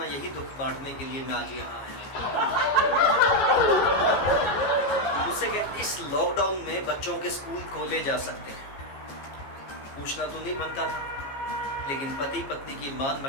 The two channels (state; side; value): late; right; 15 ms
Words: यही दुख बांटने के लिए मैं आज यहाँ आया। मुझसे कहती इस लॉकडाउन में बच्चों के स्कूल खोले जा सकते हैं। पूछना तो नहीं बनता था, लेकिन पति पत्नी की मान